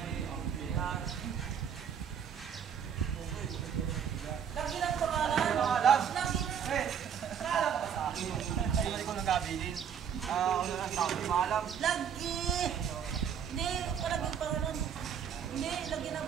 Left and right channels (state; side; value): quieter; left; 7.8 dB